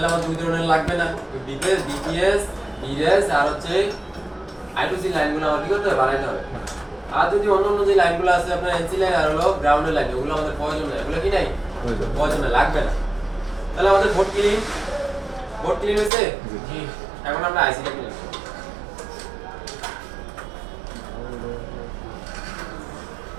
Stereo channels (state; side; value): drops out; left; at 16.1 s